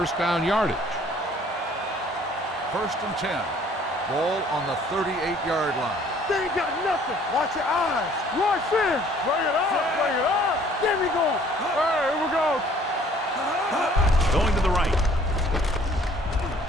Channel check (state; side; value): normal; both; correlation 0.57